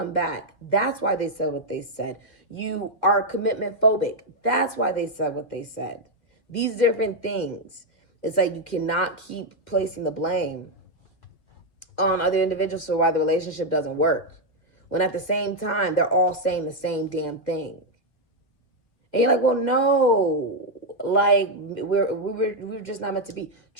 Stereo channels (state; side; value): late; right; 1.8 ms